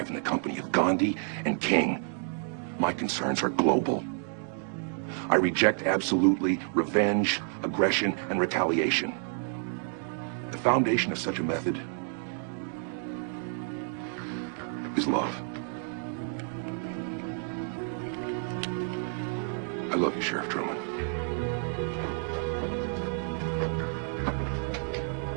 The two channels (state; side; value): silent; left; 58 dB below the other